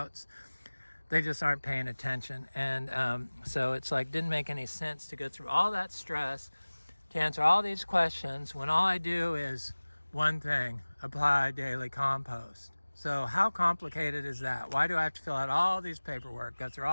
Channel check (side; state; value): both; inverted; correlation -1.00